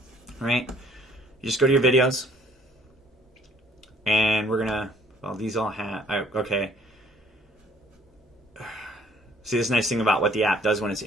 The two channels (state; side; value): normal; both; correlation 0.59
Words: right, you just go to your videos, and we're going to, well, these all have, okay. See, this nice thing about what the app does when it's